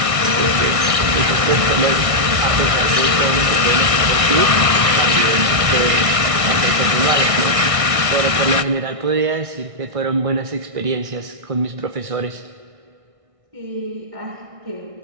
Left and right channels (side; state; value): left; late; 1.6 ms